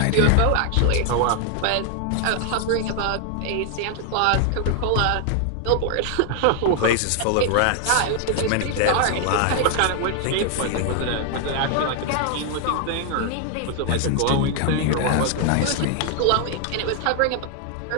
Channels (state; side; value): different; both; correlation 0.00